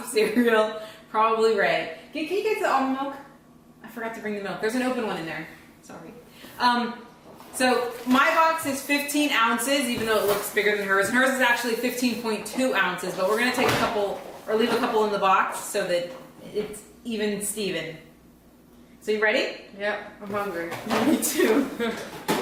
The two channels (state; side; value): identical; both; correlation 1.00